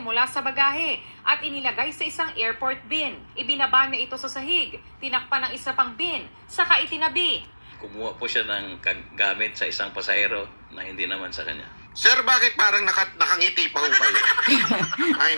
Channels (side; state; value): both; inverted; correlation -1.00